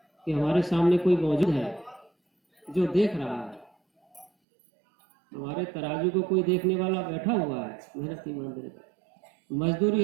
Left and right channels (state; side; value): drops out; left; at 4.3 s